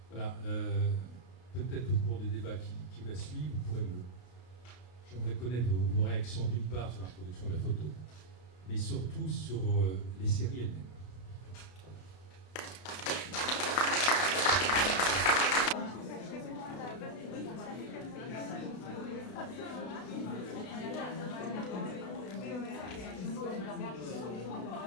Voilà, peut-être au cours des débats qui va suivre, j'aimerais connaître vos réactions d'une part sur l'introduction de la photo, mais surtout sur les séries elles-mêmes.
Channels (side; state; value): right; late; 32 ms